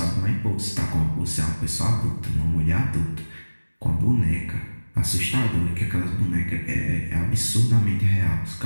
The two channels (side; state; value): both; inverted; correlation -1.00